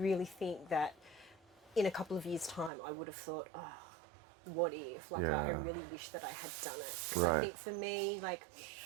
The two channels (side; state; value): left; drops out; at 2.7 s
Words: think that in a couple of years' time, I would have thought, oh, what if? Like, I really wish that I had done it. Because I think for me, like,